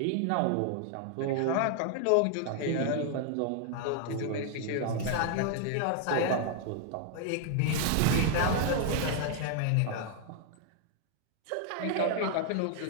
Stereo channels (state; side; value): different; both; correlation 0.00